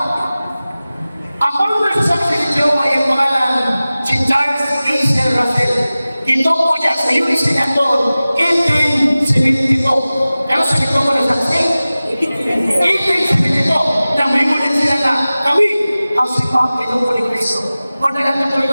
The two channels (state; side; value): inverted; both; correlation -0.97